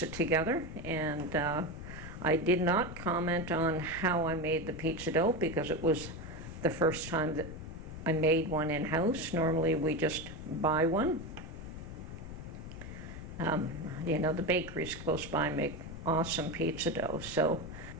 together, and I did not comment on how I made the pizza dough because it was the first time that I made one in-house. Normally we just buy one. You know, the bakeries close by make awesome pizza dough. So,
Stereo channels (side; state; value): left; noise; rumble, 10 dB below the sound